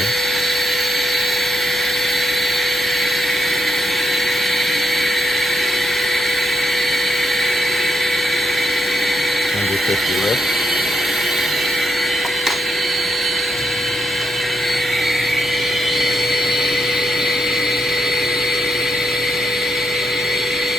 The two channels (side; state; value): left; noise; hum, 26 dB below the sound